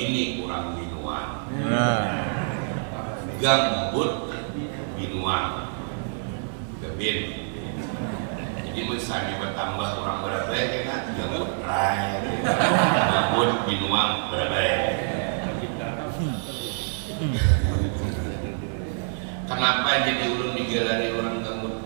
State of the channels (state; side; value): silent; left; digital silence